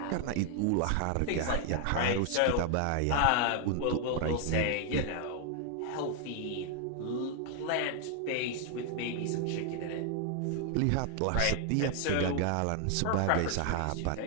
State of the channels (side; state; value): both; different; correlation 0.00